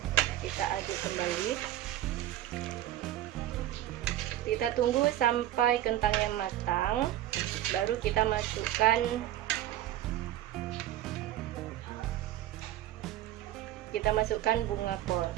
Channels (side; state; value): left; quieter; 13.3 dB